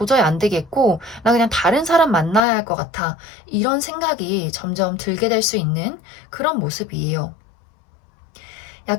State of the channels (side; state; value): right; drops out; at 2.4 s